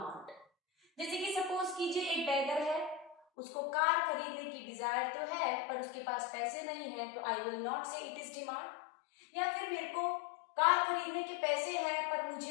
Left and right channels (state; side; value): drops out; right; at 3.2 s